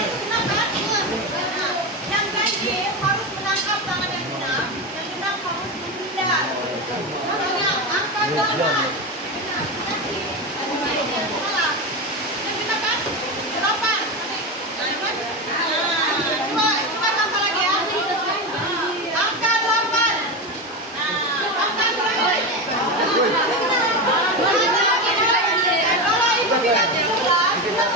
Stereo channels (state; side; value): normal; both; correlation 0.18